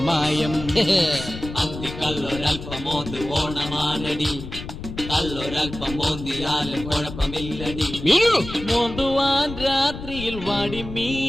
അന്തിക്കല്ലൊരൽപ്പം മോന്ത് ഓണമാനടി, കല്ലൊരൽപ്പം മോന്തിയാലും കുഴപ്പമില്ലടി. മോന്തുവാൻ രാത്രിയിൽ വാടി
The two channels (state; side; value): noise; left; rumble, 10 dB below the sound